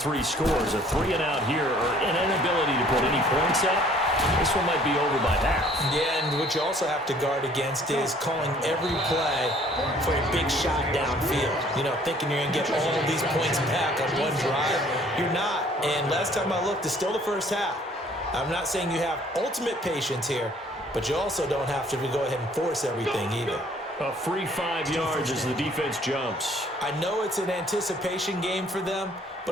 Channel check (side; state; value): both; normal; correlation 0.57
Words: scores. A 3-and-out here, or an inability to put any points up. This one might be over by half. Yeah, and what you also have to guard against is calling every play for a big shot downfield. You know, thinking you're going to get all of these points back on one drive. You're not. And last time I looked, it's still the first half. I'm not saying you have ultimate patience here, but you also don't have to go ahead and force everything either. A free 5 yards as the defense jumps. I know it's an anticipation game for them,